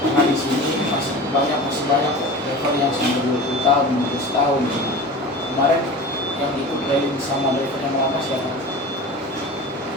di sini masih banyak level yang sampai 20 tahun, 15 tahun. Kemarin yang ikut training sama driver yang lama siapa?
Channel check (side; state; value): both; normal; correlation 0.34